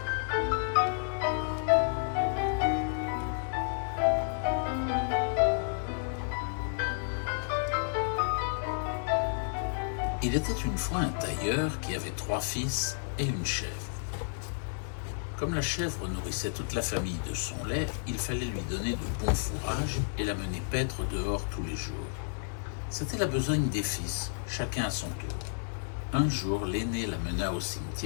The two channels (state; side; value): silent; right; digital silence